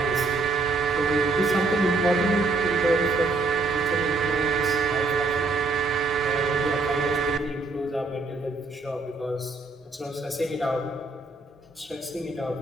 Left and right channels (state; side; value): quieter; left; 3.5 dB